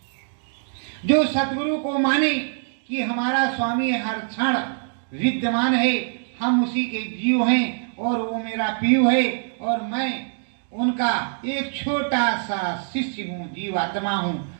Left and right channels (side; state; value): left; silent; digital silence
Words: जो सदगुरु को माने कि हमारा स्वामी हर क्षण विद्यमान है, हम उसी के जीव हैं और वो मेरा पीयू है और मैं उनका एक छोटा सा शिष्य हूँ, जीवात्मा